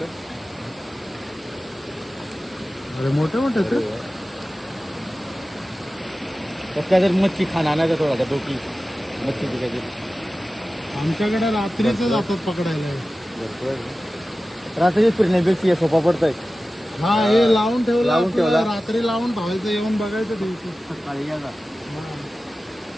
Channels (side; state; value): both; normal; correlation 0.95